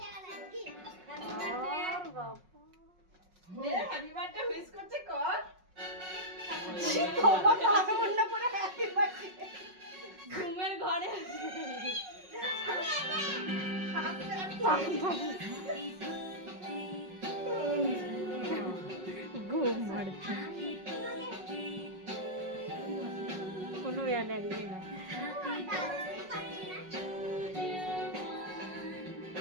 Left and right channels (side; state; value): left; late; 5.5 ms